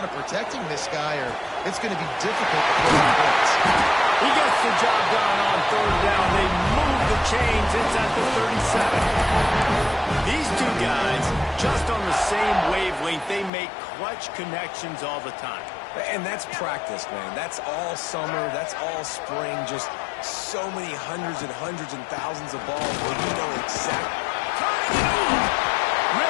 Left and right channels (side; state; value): right; drops out; at 13.5 s